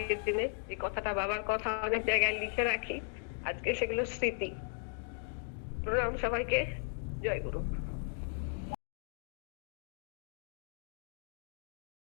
দিনে। এই কথাটা, বাবার কথা অনেক জায়গায় লিখে রাখি, আজকে সেগুলো স্মৃতি। প্রণাম সবাইকে, জয় গুরু।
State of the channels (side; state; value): right; silent; 53 dB below the other